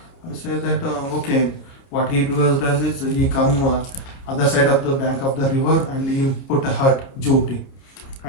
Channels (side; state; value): right; late; 29 ms